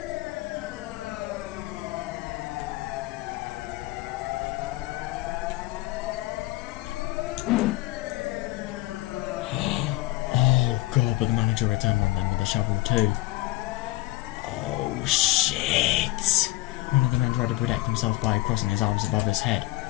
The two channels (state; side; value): quieter; right; 18.1 dB